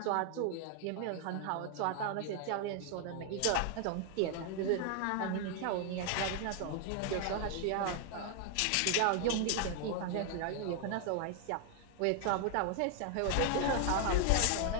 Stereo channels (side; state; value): both; different; correlation 0.00